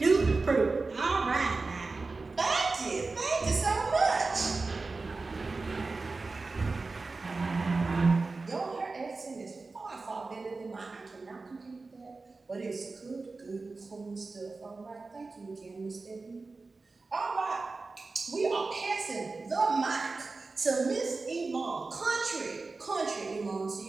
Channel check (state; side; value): quieter; left; 3.8 dB